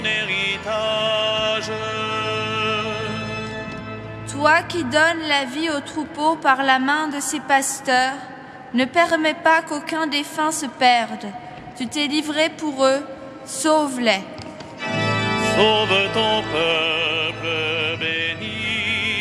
héritage. Toi qui donnes la vie aux troupeaux par la main de ses pasteurs, ne permets pas qu'aucun défunt se perde. Tu t'es livré pour eux, sauve-les. Sauve ton peuple,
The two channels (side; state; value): both; identical; correlation 1.00